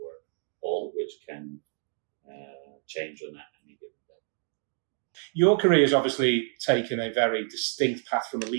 all of which can change on any given day. Your career has obviously taken a very distinct path from a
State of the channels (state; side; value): silent; left; 59 dB below the other